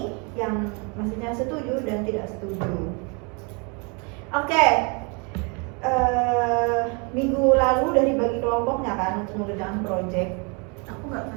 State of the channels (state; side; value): quieter; left; 33.0 dB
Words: yang maksudnya setuju dan tidak setuju. Oke. Minggu lalu udah dibagi kelompoknya kan untuk mengerjakan project. Aku nggak